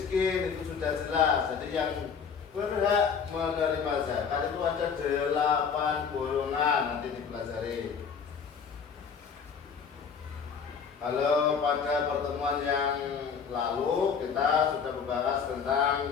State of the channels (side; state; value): right; quieter; 6.4 dB